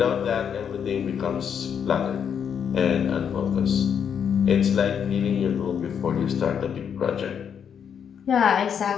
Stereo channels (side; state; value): right; quieter; 7.8 dB